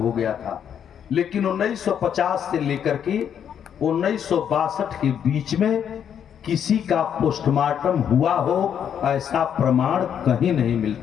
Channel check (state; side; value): quieter; right; 8.6 dB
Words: हो गया था। लेकिन 1950 से लेकर के 1962 के बीच में किसी का पोस्टमार्टम हुआ हो ऐसा प्रमाण कहीं नहीं